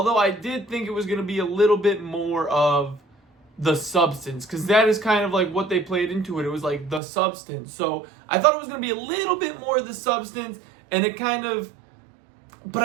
I did think it was going to be a little bit more of the substance, because that is kind of like what they played into it. It was like the substance. So I thought it was going to be a little bit more of the substance, and it kind of... But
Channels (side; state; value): left; drops out; at 7.0 s